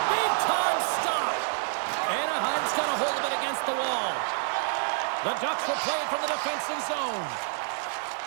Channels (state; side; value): silent; left; digital silence